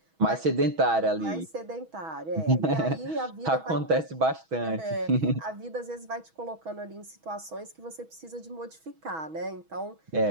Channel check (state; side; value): late; left; 6.2 ms